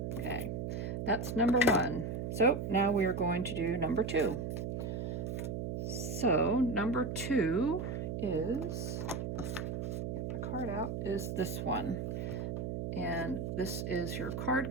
Okay, that's number 1. So now we are going to do number 2. So number 2 is, get my card out, is this one. And this is your card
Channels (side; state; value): right; noise; hum, 3 dB below the sound